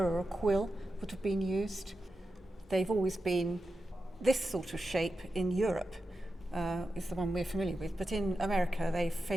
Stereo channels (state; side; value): normal; both; correlation 0.90